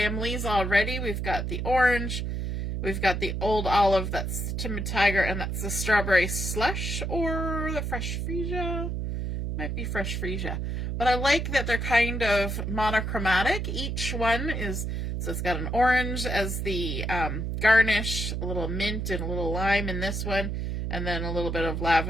already. We've got the orange, we've got the Old Olive, that's the Timid Tiger, and that's the Strawberry Slush or the Fresh Freesia. Might be fresh freesia. But I like that they're kind of monochromatic. Each one is, so it's got an orange as the garnish, a little mint and a little lime in this one, and then a little bit of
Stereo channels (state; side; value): noise; right; hum, 2 dB below the sound